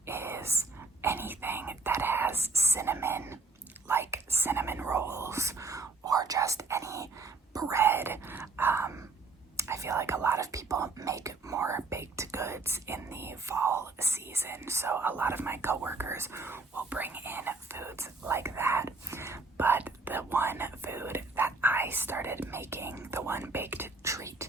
people make more baked goods in the fall season. So a lot of my coworkers will bring in foods like that. But the one food that I started making, the one baked treat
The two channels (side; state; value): left; quieter; 3.9 dB